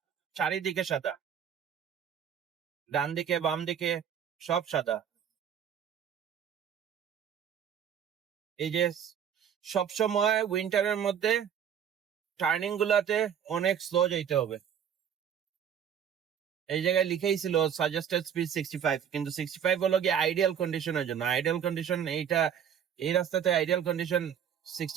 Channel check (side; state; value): left; quieter; 8.5 dB